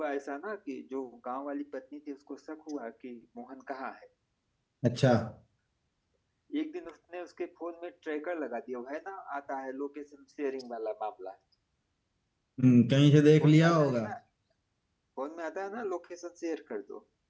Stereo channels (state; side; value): identical; both; correlation 1.00